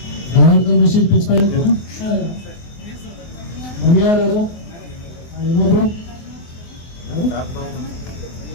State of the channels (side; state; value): right; late; 24 ms